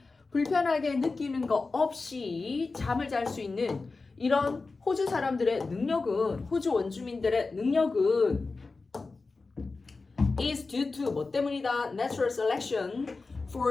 불편하게 느끼는 거 없이 잠을 잘 수 있는 이런 호주 사람들의 능력은 호주 원주민들의 능력은 is due to 뭐 때문이다? Natural selection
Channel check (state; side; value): quieter; right; 3.9 dB